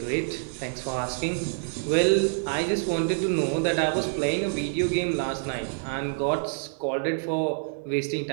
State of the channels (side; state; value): left; silent; digital silence